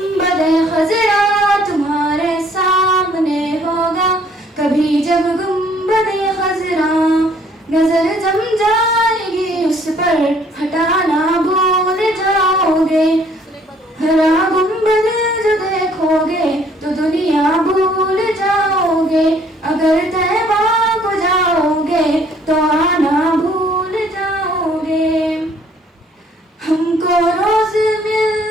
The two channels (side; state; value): both; normal; correlation 0.61